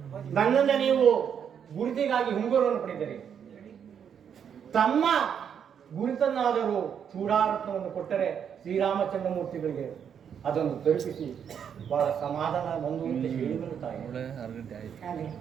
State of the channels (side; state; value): left; quieter; 8.0 dB